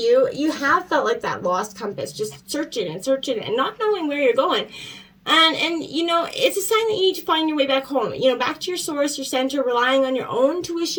you have felt like that lost compass, just searching and not knowing where you're going. And it's a sign that you need to find your way back home, back to your source, your center, relying on your own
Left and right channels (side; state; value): both; identical; correlation 1.00